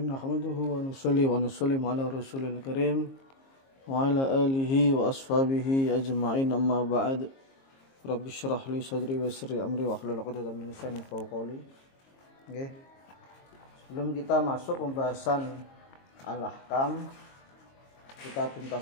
Nahmaduhu wa nusalli wa nusallimu ala rasulil karim wa ala alihi wa ashabihi ajma'in, amma ba'd. Rabbi syrah li sadri wa yassir li amri wa hlul 'uqdatam min lisani yafqahu qawli. Nggih. Sebelum kita masuk pembahasan al-ahkam, kita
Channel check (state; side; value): late; right; 22 ms